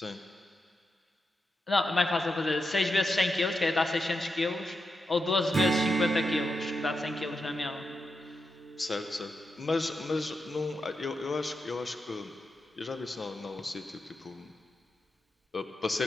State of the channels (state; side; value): normal; both; correlation 0.87